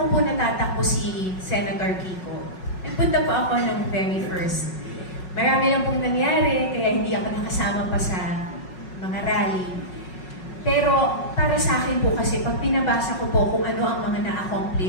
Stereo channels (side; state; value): right; late; 5.5 ms